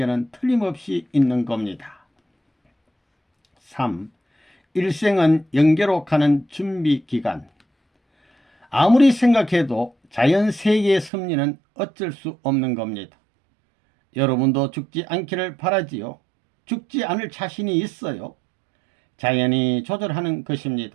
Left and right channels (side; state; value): left; drops out; at 11.1 s